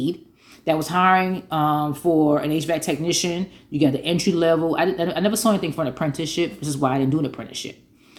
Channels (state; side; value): identical; both; correlation 1.00